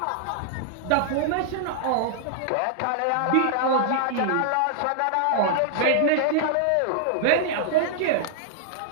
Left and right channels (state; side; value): different; both; correlation -0.01